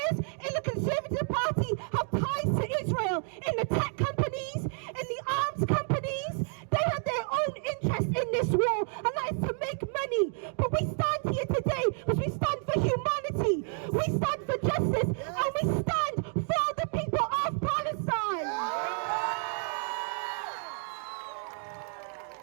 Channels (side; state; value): left; silent; 56 dB below the other